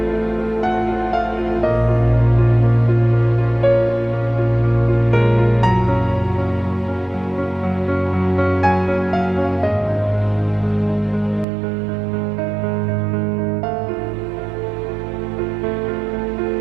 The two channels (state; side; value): drops out; left; at 11.5 s